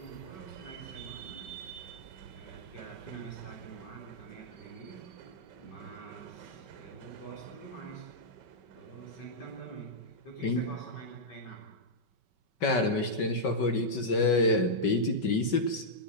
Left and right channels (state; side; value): late; right; 5.3 ms